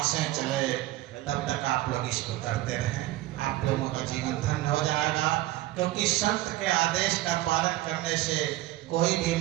चले तब तक आप लोग इसको करते रहें, आप लोगों का जीवन धन्य हो जाएगा। क्योंकि संत के आदेश का पालन करने से कोई भी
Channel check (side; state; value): left; quieter; 16.3 dB